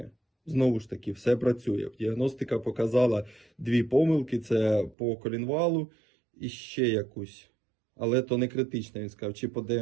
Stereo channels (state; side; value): drops out; left; at 5.0 s